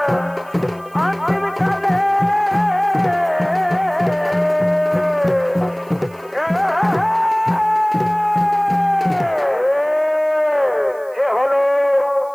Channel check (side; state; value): right; noise; hiss, 28 dB below the sound